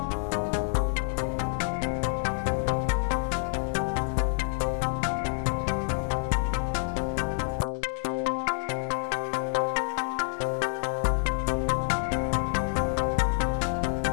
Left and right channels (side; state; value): right; silent; digital silence